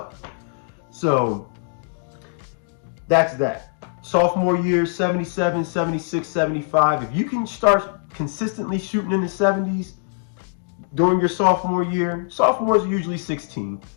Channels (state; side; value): silent; right; digital silence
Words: So that's that. Sophomore year, 77, 76, 75. If you can start consistently shooting in the 70s during your sophomore year, sophomores are usually 16.